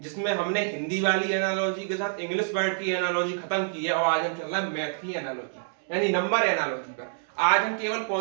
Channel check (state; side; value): silent; left; digital silence